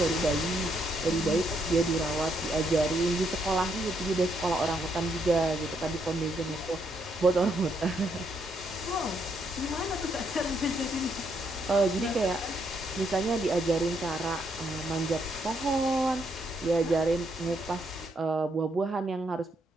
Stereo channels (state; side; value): normal; both; correlation 0.75